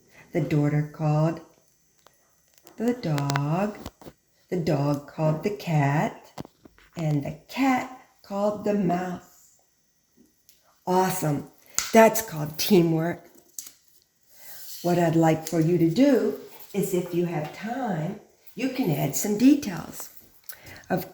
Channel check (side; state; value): both; identical; correlation 1.00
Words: called the dog called the cat, and the cat called the mouse. Awesome. That's called teamwork. What I'd like for you to do is, if you have time, you can add some details. Of